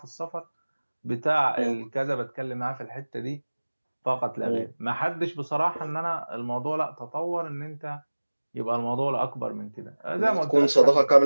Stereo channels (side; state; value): both; inverted; correlation -1.00